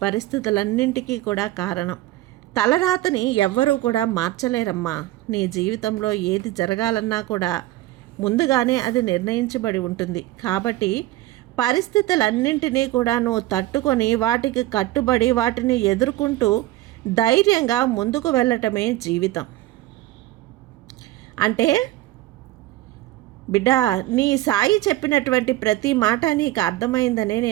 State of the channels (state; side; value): quieter; left; 16.4 dB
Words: పరిస్థితులన్నింటికీ కూడా కారణం. తలరాతని ఎవ్వరూ కూడా మార్చలేరమ్మా. నీ జీవితంలో ఏది జరగాలన్నా కూడా ముందుగానే అది నిర్ణయించబడి ఉంటుంది. కాబట్టి పరిస్థితులన్నింటినీ కూడా నువ్వు తట్టుకొని వాటికి కట్టుబడి వాటిని ఎదుర్కొంటూ ధైర్యంగా ముందుకు వెళ్ళటమే జీవితం. అంటే బిడ్డ, నీ సాయి చెప్పినటువంటి ప్రతి మాట నీకు అర్థమైందనే